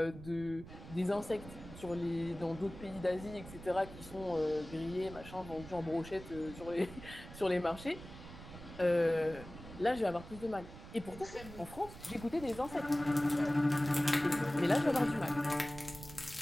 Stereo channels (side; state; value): right; noise; rumble, 15 dB below the sound